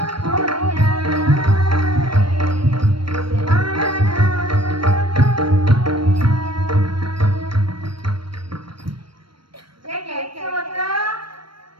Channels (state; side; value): late; left; 0.74 ms